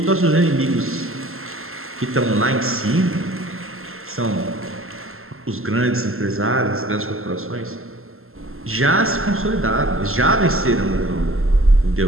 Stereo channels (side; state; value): left; late; 0.62 ms